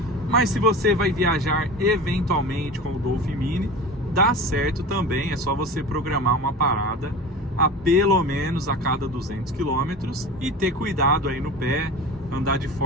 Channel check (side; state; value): both; normal; correlation 0.33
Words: Mas se você vai viajar eventualmente com o Dolphin Mini, dá certo também, é só você programar uma parada a pelo menos a cada 200 km e ter cuidado aí no pé, andar de